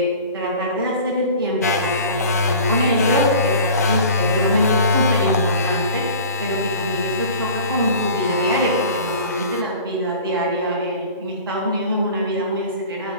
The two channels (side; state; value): both; inverted; correlation -0.41